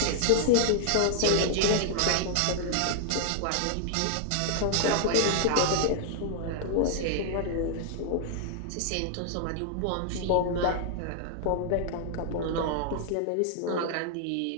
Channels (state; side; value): different; both; correlation -0.01